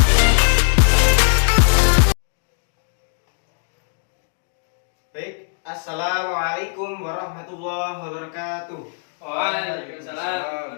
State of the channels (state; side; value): silent; right; 63 dB below the other